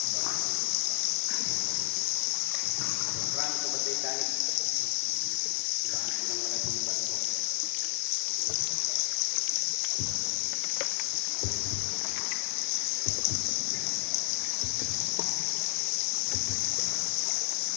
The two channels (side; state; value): right; silent; digital silence